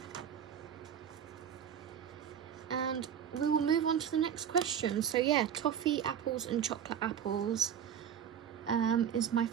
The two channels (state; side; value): quieter; left; 8.8 dB